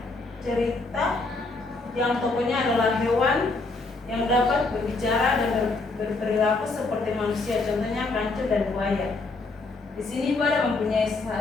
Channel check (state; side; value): quieter; right; 3.5 dB